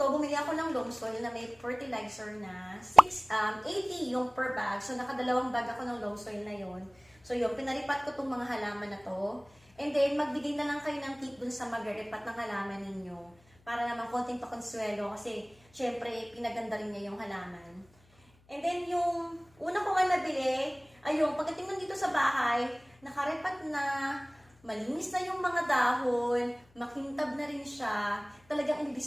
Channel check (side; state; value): left; noise; hum, 30 dB below the sound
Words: bumili ako ng loam soil na may fertilizer na 80 yung per bag. So, nakadalawang bag ako ng loam soil na yon. So, yun, pinaripat ko tong mga halaman na to. And then, magbigay na lang kayo ng tip dun sa mag-ripat ng halaman ninyo. Para naman konting pakonsuelo kasi, syempre, pinaganda rin niya yung halaman. And then, yung una ko nga nabili, ayun, pagdating nandito sa bahay, nakaripat na, malinis na yung mga dahon, makintab na rin siya, talagang